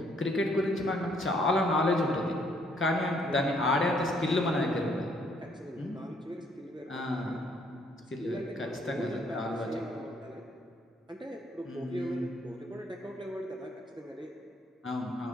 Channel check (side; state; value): both; normal; correlation 0.67